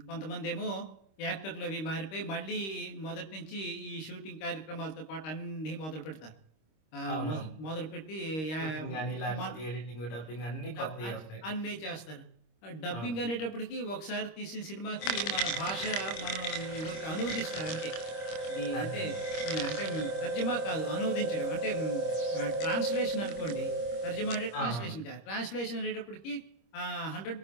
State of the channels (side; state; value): right; late; 25 ms